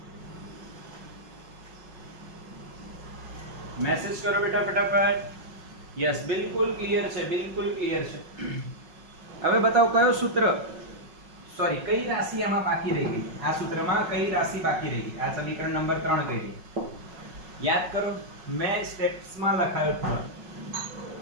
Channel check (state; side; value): late; left; 5.4 ms